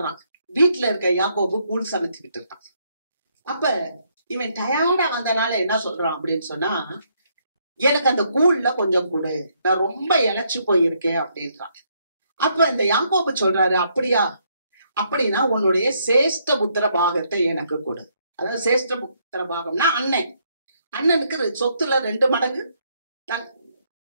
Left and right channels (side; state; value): both; inverted; correlation -0.73